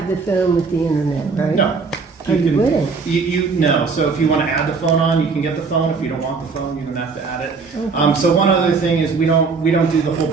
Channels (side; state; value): left; quieter; 4.8 dB